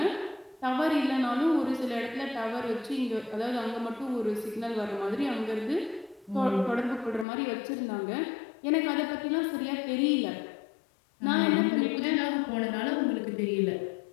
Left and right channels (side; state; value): right; drops out; at 7.2 s